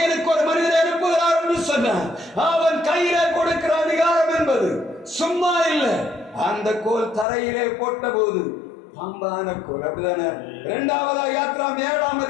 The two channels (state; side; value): drops out; right; at 7.2 s